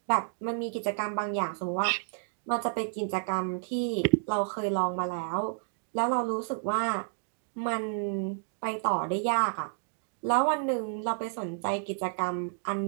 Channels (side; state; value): left; silent; digital silence